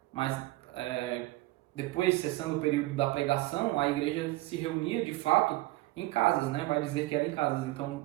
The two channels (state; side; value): quieter; left; 18.9 dB